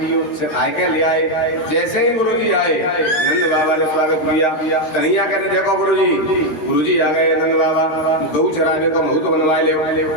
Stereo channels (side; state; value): right; late; 13 ms